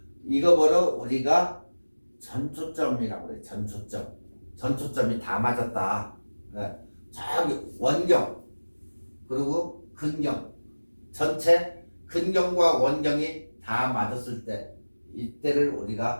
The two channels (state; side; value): inverted; both; correlation -1.00